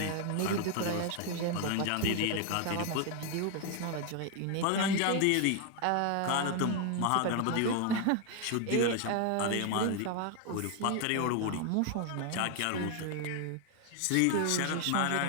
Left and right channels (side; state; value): both; different; correlation 0.01